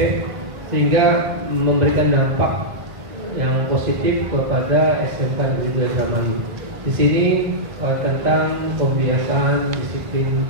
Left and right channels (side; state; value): left; late; 1.5 ms